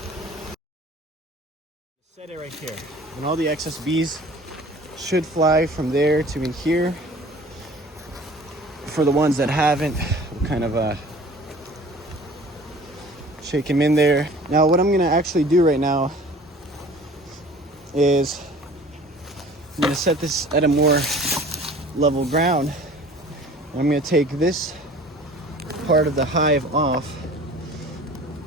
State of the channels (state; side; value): normal; both; correlation 0.46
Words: Set it right here. And all the excess bees should fly from there to in here. For the ones that haven't, we'll kind of shake them in there. Now what I'm gonna actually do right now is I'm gonna set this at a more level ground. I'm gonna take this part of the hive off,